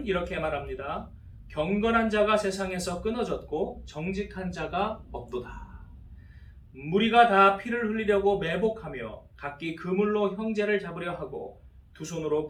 이렇게 말합니다. 경건한 자가 세상에서 끊어졌고 정직한 자가 없도다. 무리가 다 피를 흘리려고 매복하며 각기 그물로 형제를 잡으려 하고 두 손으로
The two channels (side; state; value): both; identical; correlation 1.00